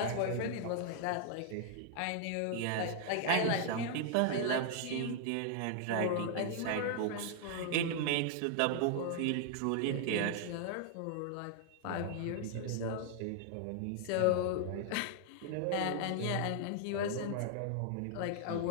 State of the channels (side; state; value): both; different; correlation 0.00